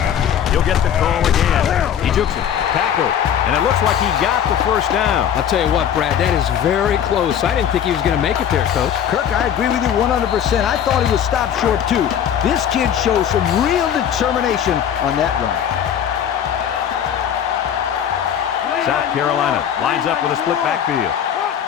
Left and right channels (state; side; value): quieter; right; 9.2 dB